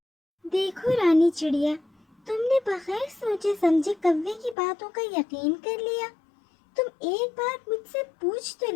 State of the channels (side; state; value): right; drops out; at 4.5 s